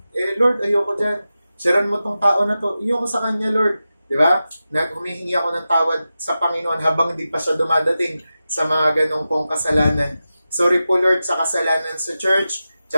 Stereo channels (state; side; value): inverted; both; correlation -0.93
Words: Lord, ayoko dyan. Sharean mo tong tao na to. Ayoko sa kanya, Lord. Diba? Humihingi ako ng tawad sa Panginoon habang hindi pa siya dumadating sa mga ganong pong kasalanan. Sorry po, Lord, sa kasalanan sa church,